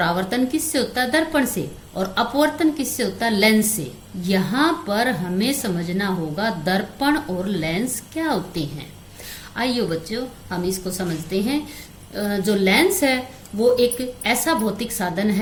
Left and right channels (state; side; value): identical; both; correlation 1.00